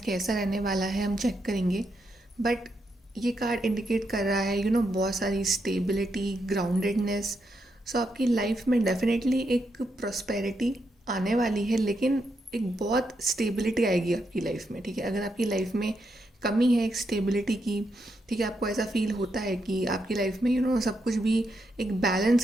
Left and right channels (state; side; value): normal; both; correlation 0.81